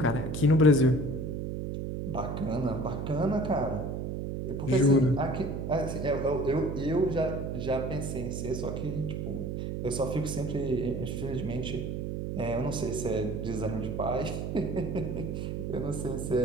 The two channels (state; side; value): noise; right; hum, 4 dB below the sound